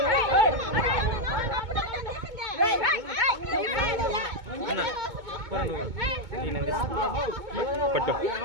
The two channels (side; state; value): left; late; 2.2 ms